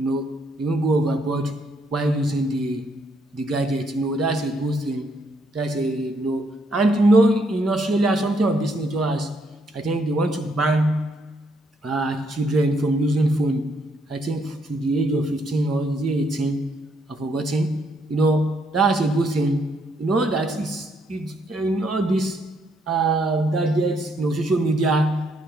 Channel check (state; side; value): normal; both; correlation 0.73